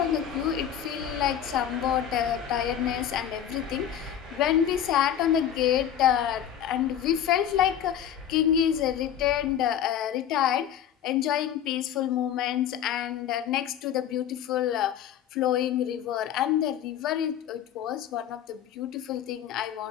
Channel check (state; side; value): quieter; right; 9.9 dB